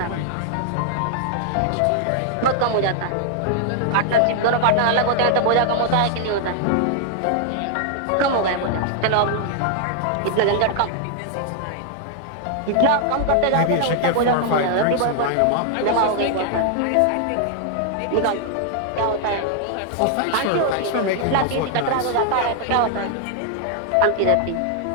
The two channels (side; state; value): both; different; correlation 0.00